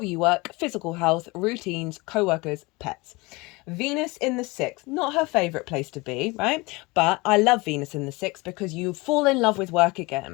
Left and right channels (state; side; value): quieter; right; 24.5 dB